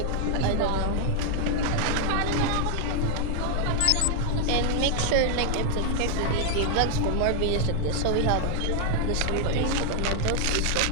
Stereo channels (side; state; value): both; different; correlation 0.00